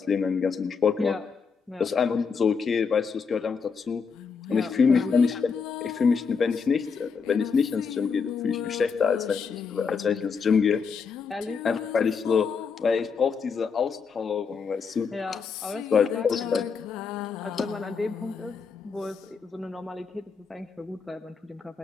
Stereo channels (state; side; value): quieter; right; 5.6 dB